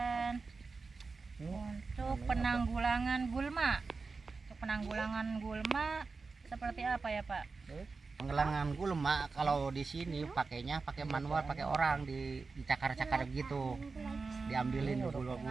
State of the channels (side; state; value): left; quieter; 4.3 dB